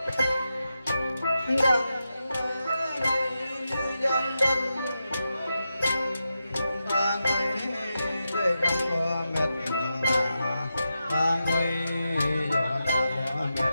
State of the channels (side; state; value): both; inverted; correlation -0.88